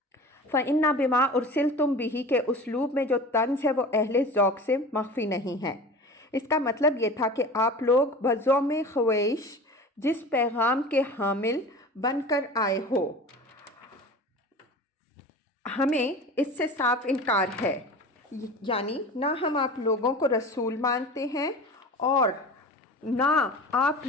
فَإِنَّا بِمَا أُرْسِلْتُمْ بِهِ کے اسلوب میں جو طنز ہے وہ اہل ذوق سے مخفی نہیں ہے۔ اس کا مطلب یہ تھا کہ آپ لوگ بزوم خویش جس پیغام کے حامل بن کر آئے ہو، ہمیں اس سے صاف انکار ہے، یعنی نہ ہم آپ لوگوں کو رسول مانتے ہیں اور نہ آپ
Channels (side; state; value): both; normal; correlation 0.36